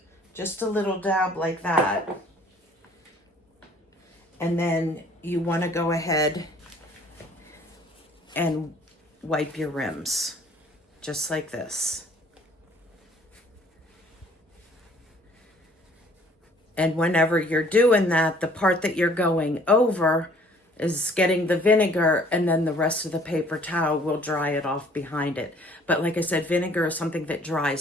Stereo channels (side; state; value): both; normal; correlation 0.57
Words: Just a little dab like that. And then you want to go ahead and wipe your rims, just like this. And whenever you're doing that, the part that you're going over is getting the vinegar, and then the rest of the paper towel will dry it off behind it. But like I said, vinegar is something that